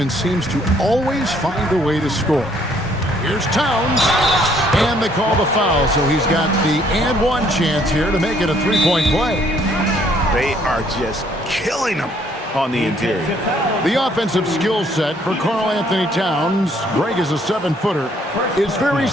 seems to always find a way to score. Here's Towns. And they call the foul, so he's got the and one chance here to make it a 3-point play. They are just killing them on the interior. The offensive skill set for Karl Anthony Towns, Greg is a 7-footer, is very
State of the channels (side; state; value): both; normal; correlation 0.65